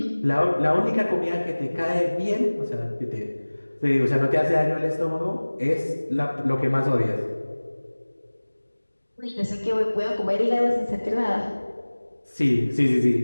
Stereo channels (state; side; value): inverted; both; correlation -1.00